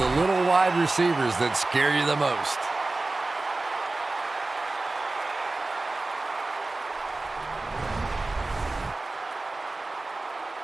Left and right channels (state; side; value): quieter; left; 3.2 dB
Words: little wide receivers that scare you the most.